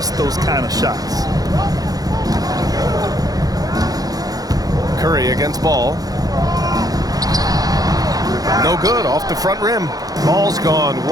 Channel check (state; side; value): late; left; 0.18 ms